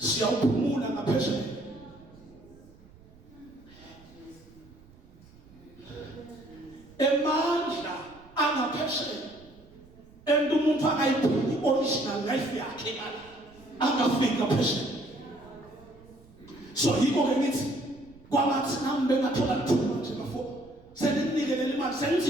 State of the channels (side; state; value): right; noise; rumble, 25 dB below the sound